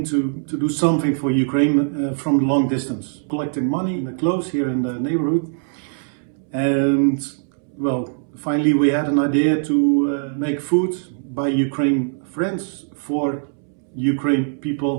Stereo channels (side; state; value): left; silent; 65 dB below the other